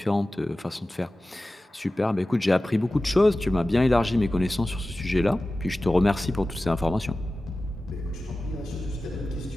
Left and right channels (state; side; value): normal; both; correlation 0.95